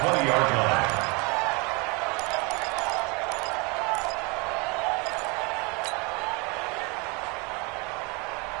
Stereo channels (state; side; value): quieter; left; 29.8 dB